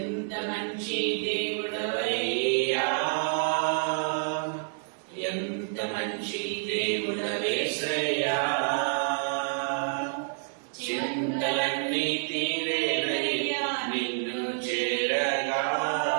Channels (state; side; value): silent; left; 59 dB below the other